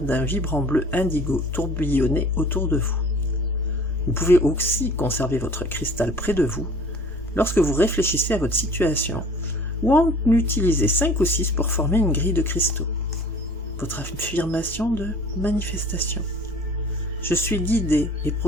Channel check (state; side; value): normal; both; correlation 0.48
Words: d'un vibrant bleu indigo tourbillonner autour de vous. Vous pouvez aussi conserver votre cristal près de vous lorsque vous réfléchissez à votre situation, ou en utiliser 5 ou 6 pour former une grille de cristaux. Votre affirmation de manifestation. Je suis guidé et